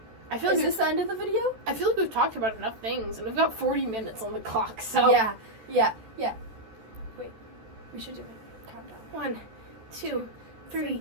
I feel Is like this the end of the video? I feel like we've talked about enough things, and we've got 40 minutes on the clock. So Yeah. Wait, we should do it. Countdown. 1, 2, 3,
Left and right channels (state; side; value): late; left; 13 ms